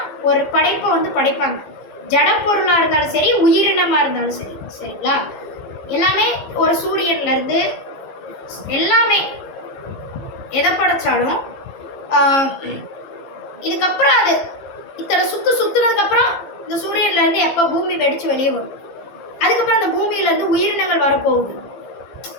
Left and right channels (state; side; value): late; right; 15 ms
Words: ஒரு படைப்பை வந்து படைப்பாங்க. ஜட பொருளாக இருந்தாலும் சரி, உயிரினமாக இருந்தாலும் சரி, சரிங்களா? எல்லாமே ஒரு சூரியன்லேருந்து எல்லாமே எதை படைச்சாலும் இதுக்கப்புறம் அது இத்தனை சுற்றுனதுக்கப்புறம் இந்த சூரியன்லேருந்து எப்போ பூமி வெடித்து வெளியே வரும், அதுக்கப்புறம் அந்த பூமியிலேருந்து உயிரினங்கள் வரப்போகுது.